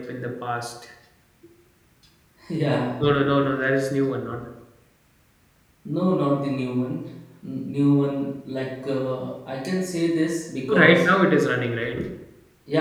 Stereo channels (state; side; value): identical; both; correlation 1.00